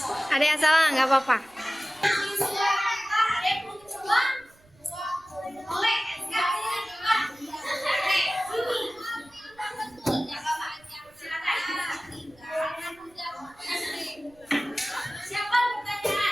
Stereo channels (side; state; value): right; noise; rumble, 29 dB below the sound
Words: Ada yang salah nggak apa-apa. Siapa